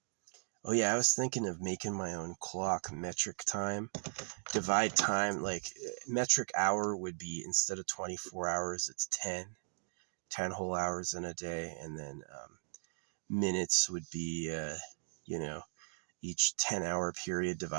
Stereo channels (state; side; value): silent; left; digital silence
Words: Oh yeah, I was thinking of making my own clock, metric time. Divide time, like metric hour would be, instead of 24 hours, it's 10 whole hours in a day. And then minutes would be, each 10-hour period